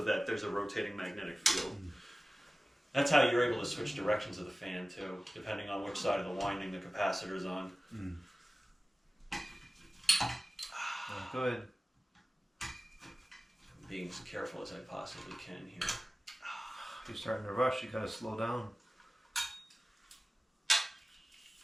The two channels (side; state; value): both; normal; correlation 0.97